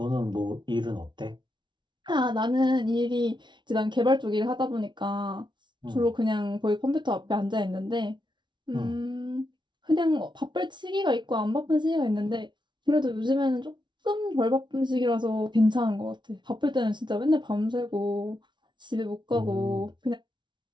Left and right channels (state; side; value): late; left; 0.23 ms